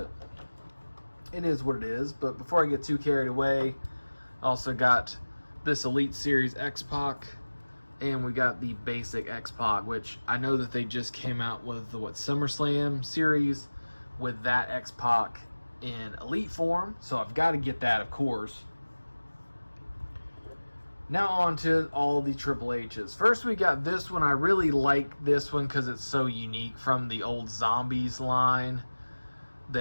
it is what it is. But before I get too carried away, I also got this Elite Series X-Pac, and we got the basic X-Pac, which I know that they just came out with the SummerSlam series with that X-Pac in Elite form, so I've got to get that, of course. Now on to all the Triple H's. First, we got this one. I really like this one because it's so unique from the old Zombies line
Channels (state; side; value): inverted; both; correlation -1.00